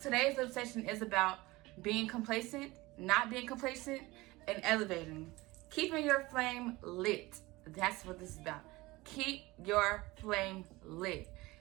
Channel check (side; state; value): left; quieter; 20.8 dB